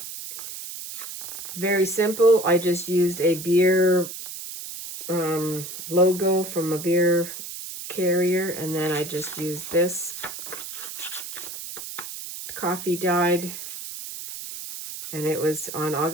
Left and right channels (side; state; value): right; noise; hiss, 9 dB below the sound